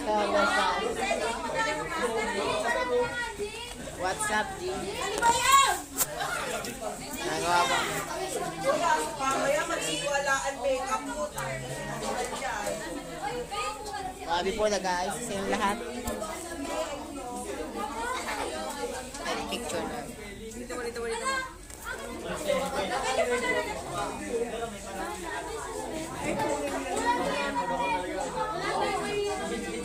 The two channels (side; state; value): both; identical; correlation 1.00